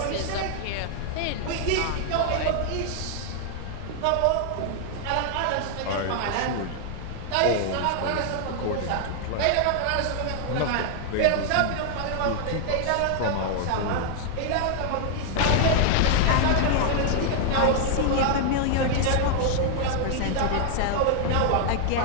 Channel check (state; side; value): different; both; correlation 0.00